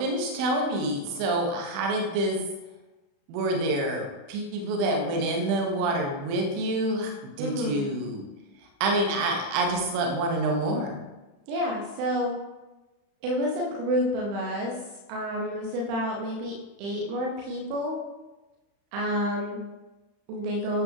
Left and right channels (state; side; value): late; left; 35 ms